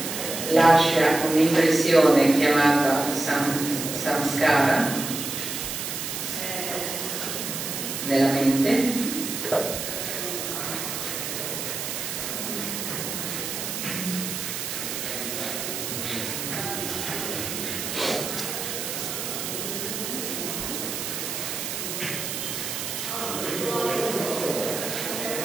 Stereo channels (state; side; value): noise; right; hiss, 4 dB below the sound